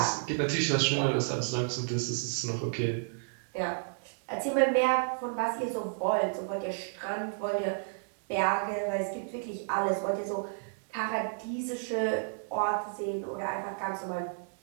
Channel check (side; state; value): left; silent; digital silence